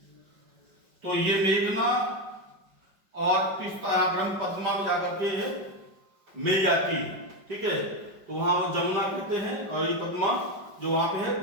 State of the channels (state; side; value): late; left; 5.2 ms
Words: तो ये मेघना और तीस्ता ब्रह्मपद्मा में जाकर के मिल जाती है, ठीक है। तो वहां वो जमुना कहते हैं और ये पद्मा जो वहां पे है